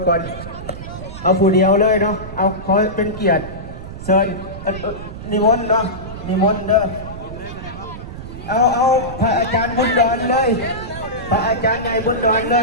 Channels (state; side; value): noise; right; rumble, 11 dB below the sound